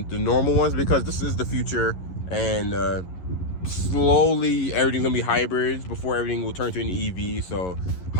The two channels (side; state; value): right; late; 11 ms